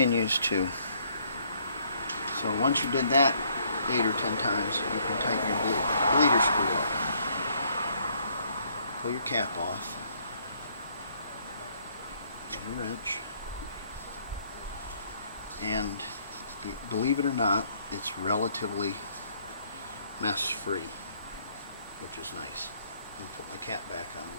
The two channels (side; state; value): both; inverted; correlation -0.66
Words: to. So once you did that 8 or 10 times, you can tighten your bleeder screw up. Pull your cap off. Get a wrench. And believe it or not, it's relatively mess free, which is nice. I'm going to put my cap back on